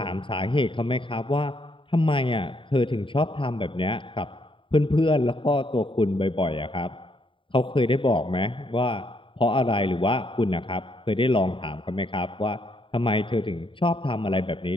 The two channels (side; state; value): right; late; 0.25 ms